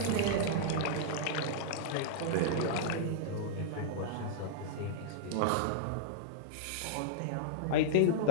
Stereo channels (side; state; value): both; different; correlation -0.02